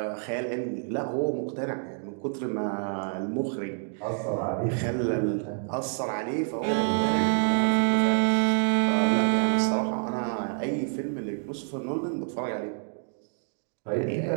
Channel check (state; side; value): silent; left; 60 dB below the other